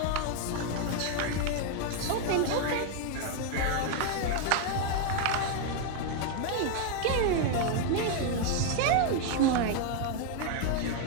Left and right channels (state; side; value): different; both; correlation 0.00